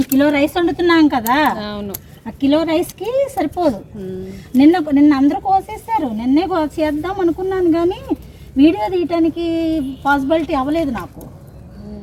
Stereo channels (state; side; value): identical; both; correlation 1.00